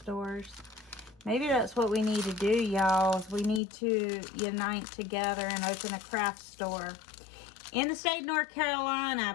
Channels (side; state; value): right; drops out; at 3.6 s